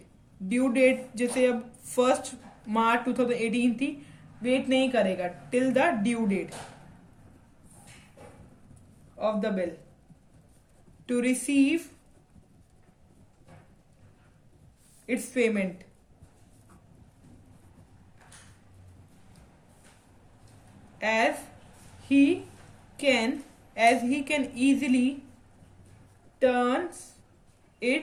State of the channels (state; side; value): identical; both; correlation 1.00